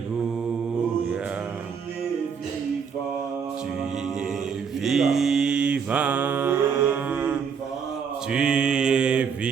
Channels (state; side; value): quieter; left; 6.5 dB